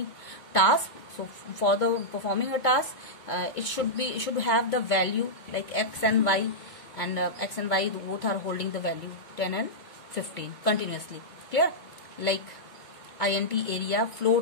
task, so for the performing a task, it should have the value like x and y, and x and y both are holding the value 10 and 15 continuously. Clear? Like int area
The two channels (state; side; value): late; right; 2.2 ms